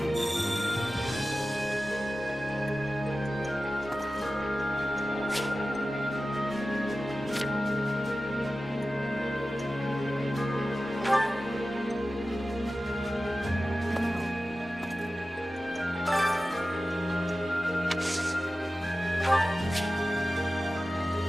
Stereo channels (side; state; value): both; normal; correlation 0.95